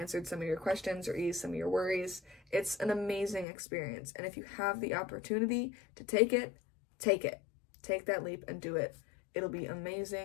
some of your questions or eased some of your worries. It's an amazing experience, and if you have the opportunity to take it, take it. Take that leap and do it. It'll be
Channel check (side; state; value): right; drops out; at 3.5 s